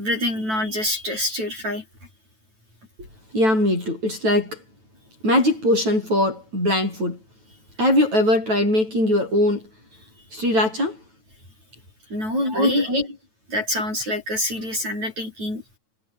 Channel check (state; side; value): late; left; 9.2 ms